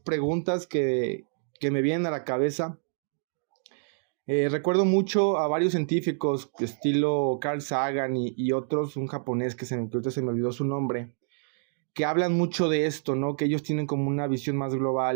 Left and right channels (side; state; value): left; silent; digital silence